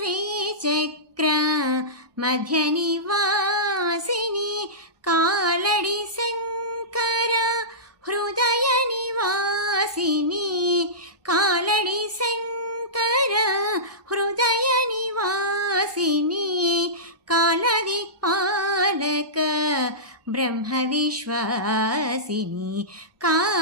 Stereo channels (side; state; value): left; late; 1.2 ms